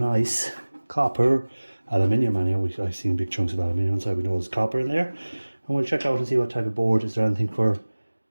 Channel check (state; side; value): inverted; both; correlation -1.00